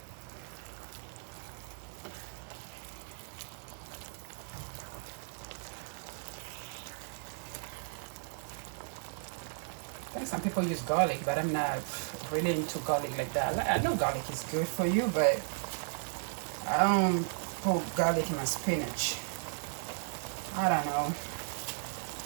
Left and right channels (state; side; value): silent; left; 54 dB below the other